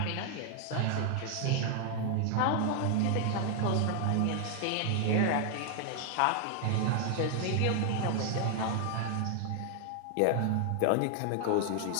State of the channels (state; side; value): different; both; correlation 0.00